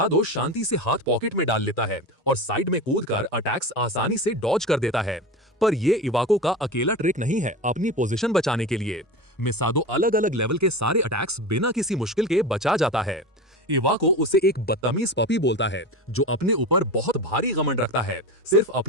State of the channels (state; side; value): normal; both; correlation 0.26